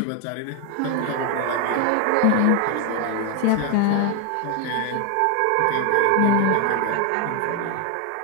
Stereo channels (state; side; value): different; both; correlation 0.01